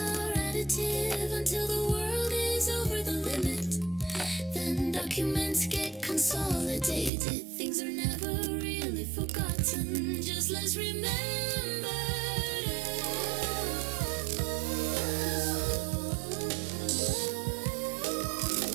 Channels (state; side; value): drops out; left; at 7.1 s